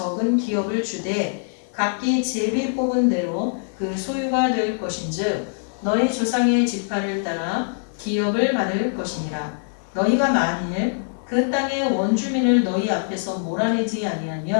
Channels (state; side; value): silent; right; 63 dB below the other